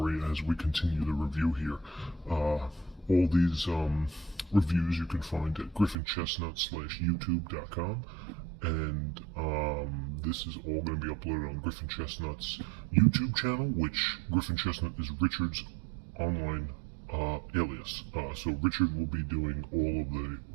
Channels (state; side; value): drops out; left; at 6.0 s